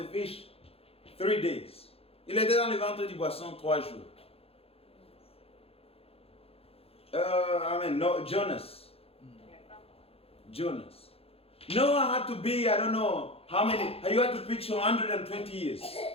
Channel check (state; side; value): late; right; 0.28 ms